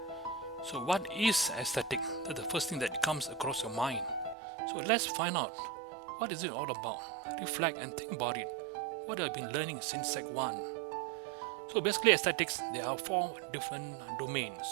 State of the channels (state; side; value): drops out; left; at 4.4 s